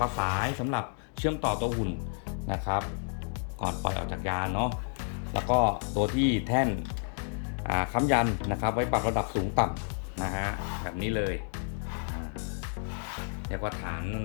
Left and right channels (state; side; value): silent; right; 57 dB below the other